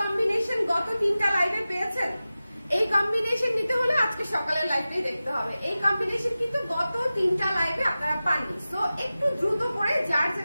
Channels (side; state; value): both; inverted; correlation -0.95